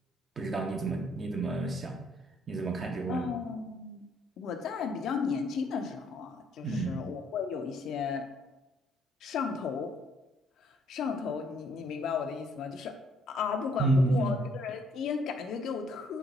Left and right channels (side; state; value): both; normal; correlation 0.66